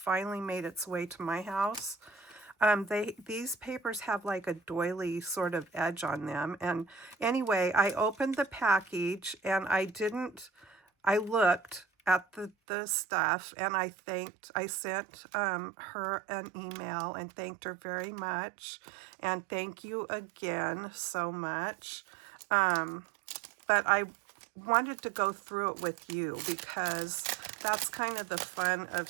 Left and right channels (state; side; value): drops out; left; at 12.5 s